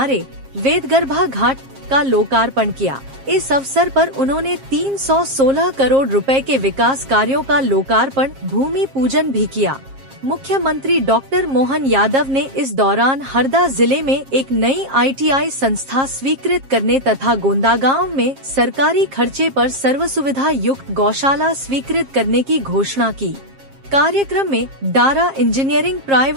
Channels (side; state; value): left; late; 7.5 ms